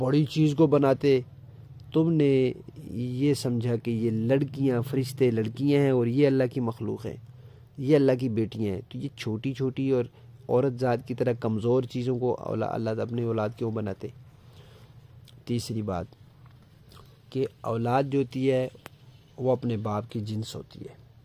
چیز کو بناتے۔ تم نے یہ سمجھا کہ یہ لڑکیاں، فرشتے لڑکیاں ہیں اور یہ اللہ کی مخلوق ہیں، یہ اللہ کی بیٹیاں ہیں، تو یہ چھوٹی چھوٹی اور عورت ذات کی طرح کمزور چیزوں کو اللہ اپنی اولاد کیوں بناتے؟ تیسری بات کہ اولاد جو ہوتی ہے وہ اپنے باپ کی جنس ہوتی ہے۔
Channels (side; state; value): both; identical; correlation 1.00